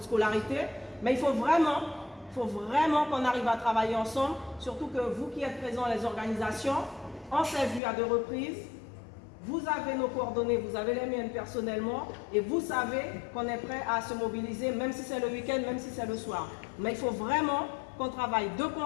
scolarité. Mais il faut vraiment qu'on arrive à travailler ensemble. Surtout que vous qui êtes présents, les organisations, on s'est vu à 2 reprises. Vous avez nos coordonnées, vous avez les miennes personnellement et vous savez qu'on est prêt à se mobiliser, même si c'est le week-end, même si c'est le soir. Mais il faut vraiment qu'on travaille de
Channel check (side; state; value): right; drops out; at 7.8 s